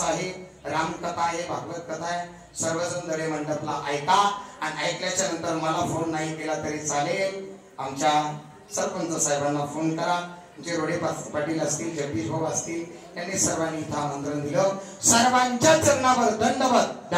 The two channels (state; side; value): identical; both; correlation 1.00